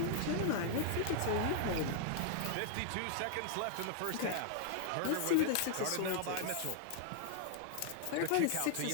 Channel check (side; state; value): both; different; correlation 0.00